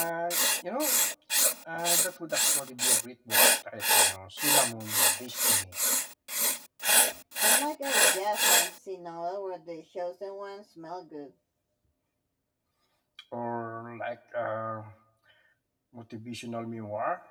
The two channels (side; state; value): both; identical; correlation 1.00